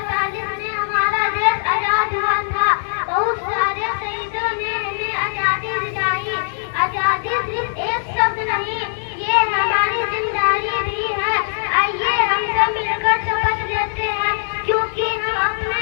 में हमारा देश आजाद हुआ था। बहुत सारे शहीदों ने हमें आजादी दिलाई। आजादी सिर्फ एक शब्द नहीं, ये हमारी जिम्मेदारी भी है। आइए हम सब मिलकर शपथ लेते हैं, क्योंकि हम अपने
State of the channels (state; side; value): silent; right; digital silence